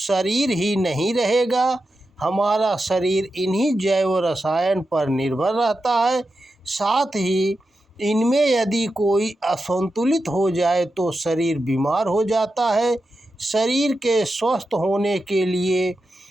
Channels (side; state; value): both; normal; correlation 0.89